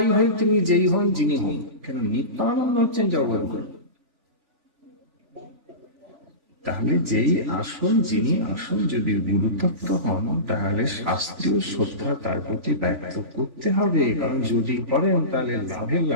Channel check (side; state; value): left; late; 3.5 ms